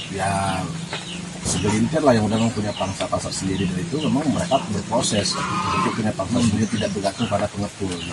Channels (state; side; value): identical; both; correlation 1.00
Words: ya segelintir lah yang udah punya pangsa pasar sendiri, dari itu memang mereka berproses untuk punya pangsa sendiri, tidak bergantung pada pengepul gitu.